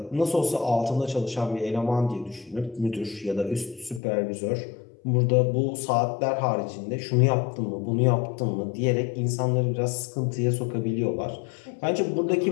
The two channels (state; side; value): drops out; right; at 4.0 s